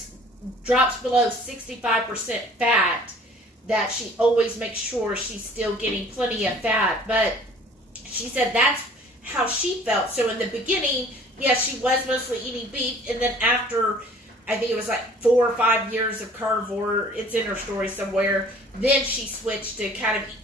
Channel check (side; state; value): both; normal; correlation 0.52